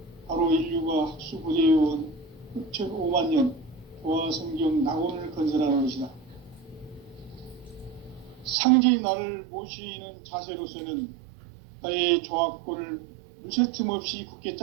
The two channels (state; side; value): drops out; left; at 8.6 s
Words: 바로 인류가 학수고대해온 흑천 5만 년 조화 성경 낙원을 건설하는 것이다. 상제인 나를 모시는 자세로서는 나의 조합권을 무쇠틈 없이 굳게